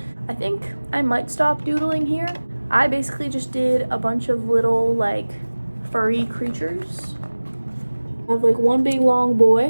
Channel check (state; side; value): inverted; both; correlation -1.00